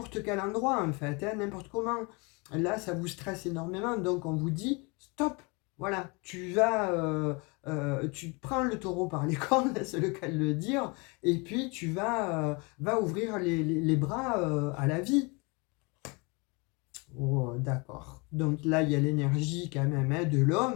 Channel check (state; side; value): quieter; right; 29.1 dB